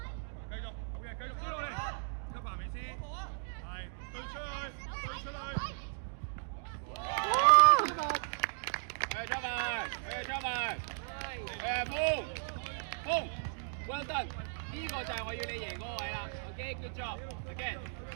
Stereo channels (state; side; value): silent; left; digital silence